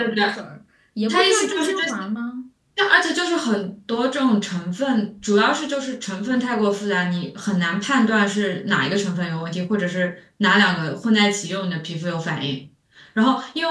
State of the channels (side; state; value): both; identical; correlation 1.00